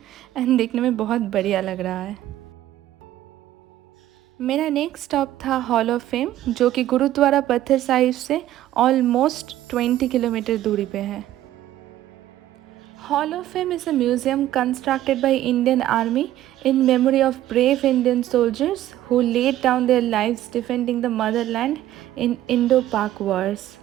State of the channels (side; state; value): left; quieter; 13.5 dB